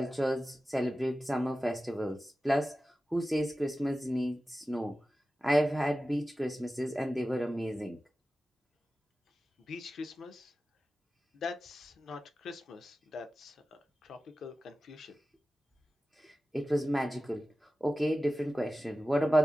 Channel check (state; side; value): normal; both; correlation 0.95